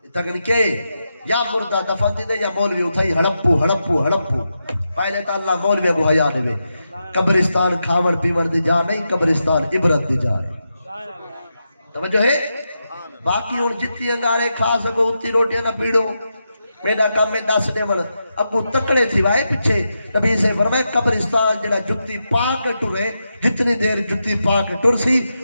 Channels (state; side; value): inverted; both; correlation -0.87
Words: تکن کے یا مردہ دفن دے یا مولوی اٹھائی ہڑپو پہلے تا اللہ مولوی کو حیا دے قبرستان کھاون پیون دی جا نہیں قبرستان عبرت دی جا توجہ ہے. باقی اور جتنی انگارے کھا سکو اتنی روٹیاں نہ پیڑو میرا کام میں 10 دے من ابو تکڑے تھی وائے پیچھے نبی سے فرمائے قبرستان جڑا جتی پاک ٹرے جتنی دیر جتی پاک ٹر سی